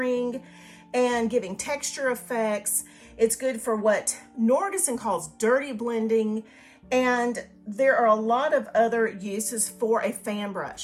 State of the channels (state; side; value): identical; both; correlation 1.00